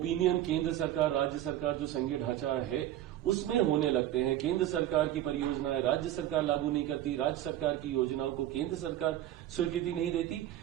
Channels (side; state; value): left; quieter; 12.9 dB